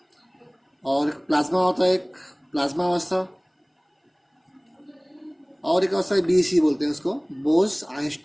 और एक प्लाज्मा होता है, एक प्लाज्मा अवस्था, और एक अवस्था बीसी बोलते हैं उसको, बोस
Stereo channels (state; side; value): identical; both; correlation 1.00